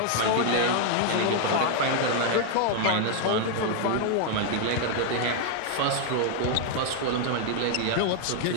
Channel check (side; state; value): both; different; correlation 0.00